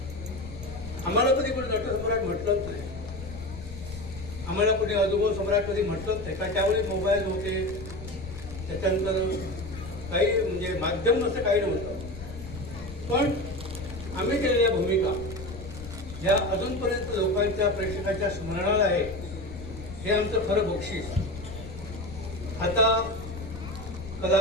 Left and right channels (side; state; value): left; noise; rumble, 12 dB below the sound